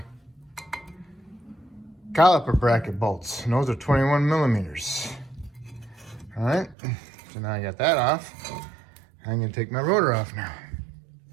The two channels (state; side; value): drops out; left; at 6.8 s